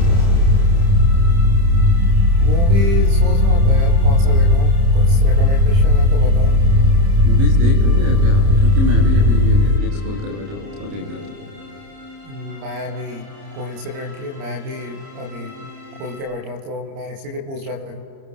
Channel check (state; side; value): late; left; 30 ms